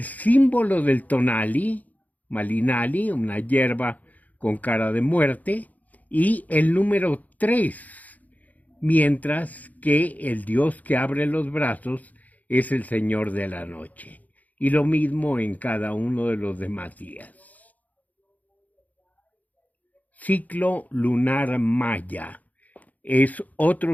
símbolo del tonali, malinali, una hierba con cara de muerte, y el número 3, mientras que el dios que abre los brazos es el señor de la noche. Y lo mismo en cada uno de los demás días. Ciclo lunar maya. Es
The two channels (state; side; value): late; right; 0.078 ms